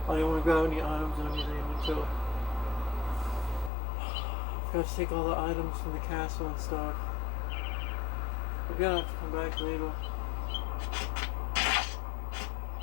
I didn't want to grab any items and everything until I forgot to take all the items from the castle and stuff. We're gonna have to come back later.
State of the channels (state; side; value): drops out; right; at 3.7 s